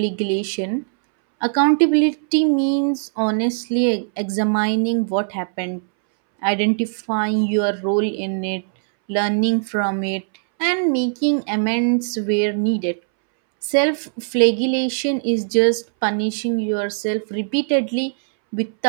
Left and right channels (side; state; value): left; silent; 66 dB below the other